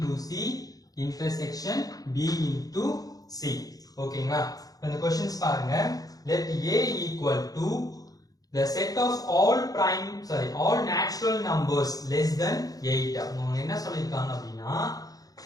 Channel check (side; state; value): right; late; 0.18 ms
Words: c intersection b into c ஓகேங்களா இப்போ இந்த क्वेश्चंस பாருங்க let a equal to the set of all natural numbers less than 8 அவங்க என்ன சொல்லிருக்காங்க அப்படினா